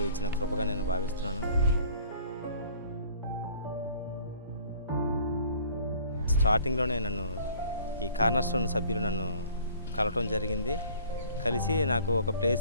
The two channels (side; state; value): both; inverted; correlation -0.53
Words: ఇచ్చిన కృపగా నేను భావిస్తున్నాను. స్టార్టింగ్లోనే నన్ను ఈ కార్నర్స్టోన్ సభ్యులు నన్ను కలవటం జరిగింది. కలిసి నాకు ఒక